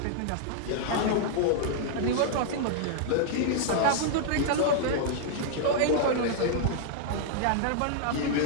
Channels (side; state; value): both; different; correlation -0.01